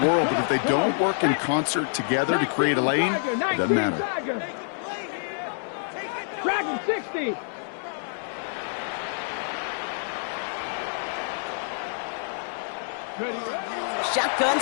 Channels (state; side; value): silent; right; 60 dB below the other